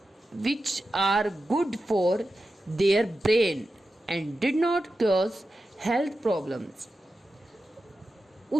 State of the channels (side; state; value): both; normal; correlation 0.92